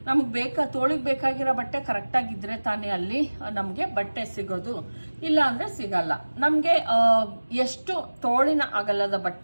ನಮ್ಗೆ ತೋಳಿಗೆ ಬೇಕಾಗಿರೋ ಬಟ್ಟೆ ಕರೆಕ್ಟಾಗಿದ್ದರೆ ತಾನೇ ಅಲ್ಲಿ ನಮಗೆ ಬಟ್ಟೆ ಸಿಗೋದು, ಇಲ್ಲ ಅಂದರೆ ಸಿಗಲ್ಲ. ನಮಗೆ ಎಷ್ಟು ತೋಳಿನ ಅಗಲದ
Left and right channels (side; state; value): both; inverted; correlation -1.00